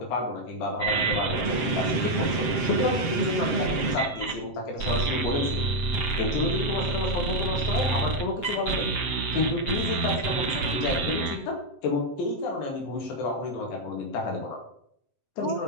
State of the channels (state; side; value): late; right; 7.7 ms